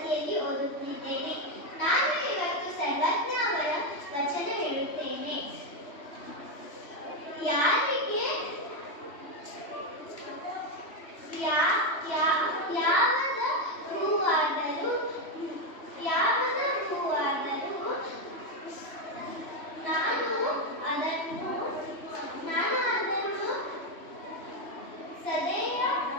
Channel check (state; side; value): late; right; 3.1 ms